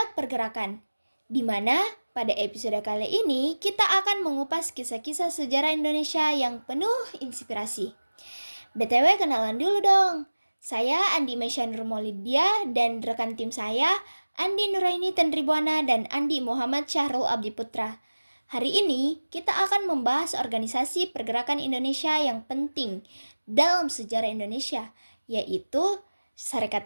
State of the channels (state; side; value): inverted; both; correlation -1.00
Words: Pergerakan, di mana pada episode kali ini kita akan mengupas kisah-kisah sejarah Indonesia yang penuh inspirasi. BTW kenalan dulu dong. Saya Andi Mesya Nurmolidia dan rekan tim saya Andi Nuraini Tendribuana dan Andi Muhammad Syahrul Abdi Putra. Hari ini kita akan membahas organisasi pergerakan Indonesia yang penting dalam sejarah Indonesia, yaitu Sarekat